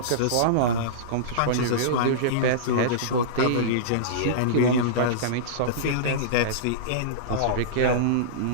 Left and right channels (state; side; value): different; both; correlation -0.04